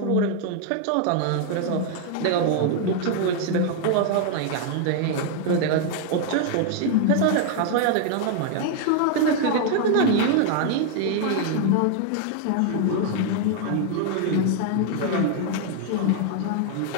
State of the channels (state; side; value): different; both; correlation 0.00